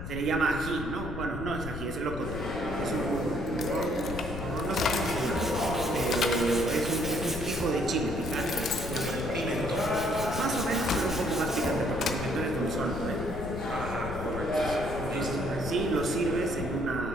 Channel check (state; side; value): noise; left; rumble, 7 dB below the sound